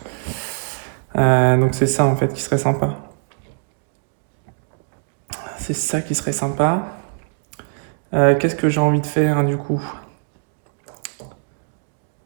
Donc c'est ça en fait qui serait sympa. C'est ça qui serait sympa. Qu'est-ce que j'ai envie de faire hein, du coup?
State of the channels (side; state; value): left; silent; 59 dB below the other